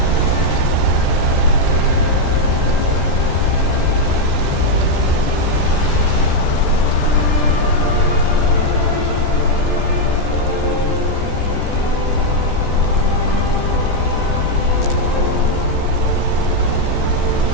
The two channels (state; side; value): late; right; 14 ms